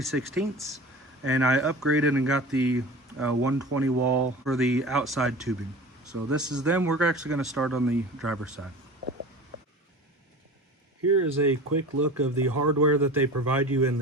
and I upgraded and got the 120 wall for the outside tubing. So this is them. We're actually going to start on the driver's side. Here is a quick look of the hardware that they provide you in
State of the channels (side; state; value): both; normal; correlation 0.37